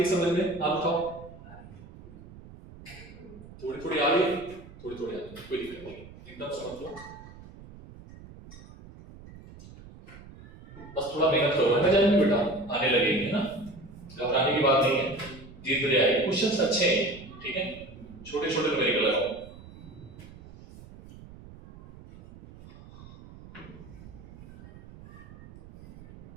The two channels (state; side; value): noise; right; rumble, 18 dB below the sound